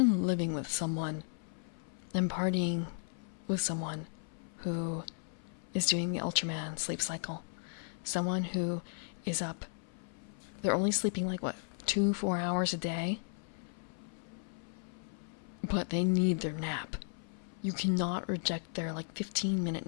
living with someone and partying with someone who is doing the Ultraman sleep cycle. Someone who is up, they're only sleeping like, 2-4 hours a day? But they need their nap. You cannot reject their 15-minute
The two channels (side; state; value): right; silent; 54 dB below the other